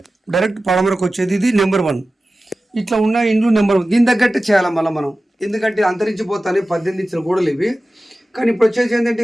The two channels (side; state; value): both; normal; correlation 0.95